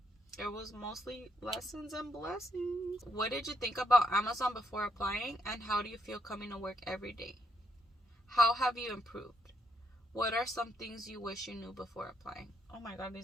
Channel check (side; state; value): both; normal; correlation 0.75